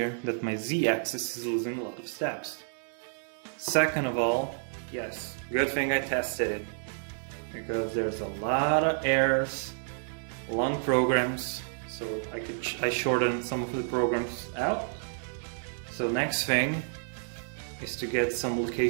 that my Z-axis is losing a lot of steps. Second of all, yes, good thing I tested it, because there's a lot of errors, long programs, so I shortened some of the programs out. So next thing is to get some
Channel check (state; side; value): silent; left; digital silence